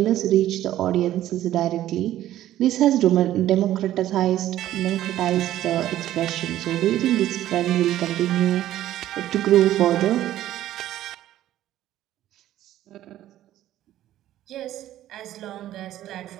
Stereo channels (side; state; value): left; quieter; 13.3 dB